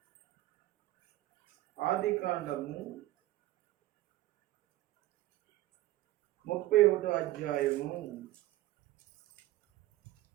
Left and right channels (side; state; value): left; quieter; 16.2 dB